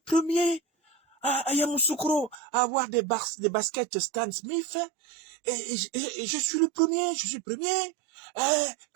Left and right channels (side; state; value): left; drops out; at 2.4 s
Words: premier à Yamoussoukro à avoir des baskets Stan Smith. Et je suis le premier. Je suis le premier.